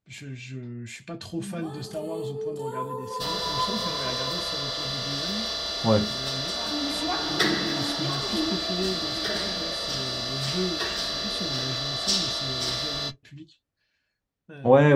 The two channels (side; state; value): both; identical; correlation 1.00